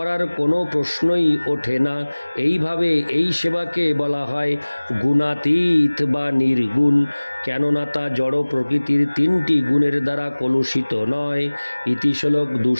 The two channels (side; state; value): both; inverted; correlation -1.00